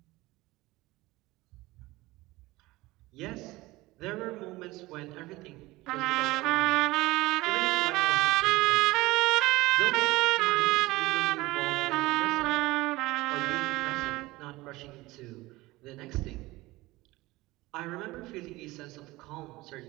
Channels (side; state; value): left; quieter; 19.9 dB